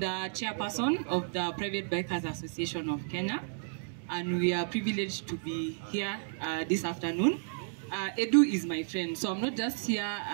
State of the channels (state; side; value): silent; left; digital silence